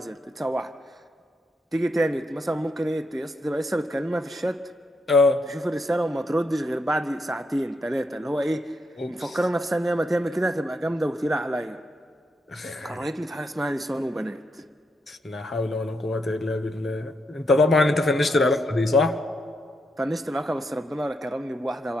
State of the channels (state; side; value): normal; both; correlation 0.80